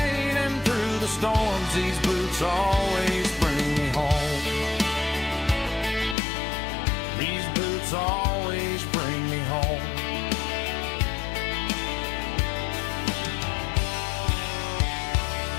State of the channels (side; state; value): right; drops out; at 6.2 s